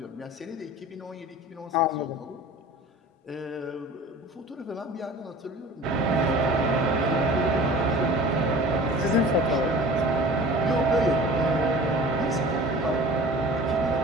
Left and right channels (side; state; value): both; normal; correlation 0.42